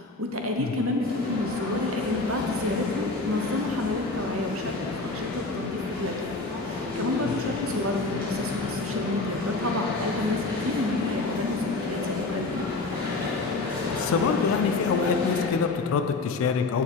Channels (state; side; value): quieter; right; 3.4 dB